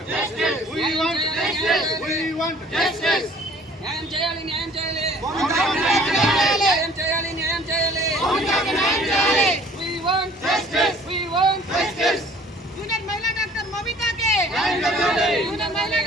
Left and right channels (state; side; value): normal; both; correlation 0.53